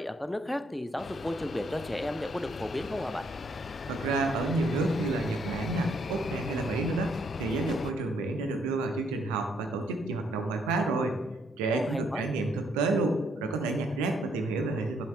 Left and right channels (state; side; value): normal; both; correlation 0.71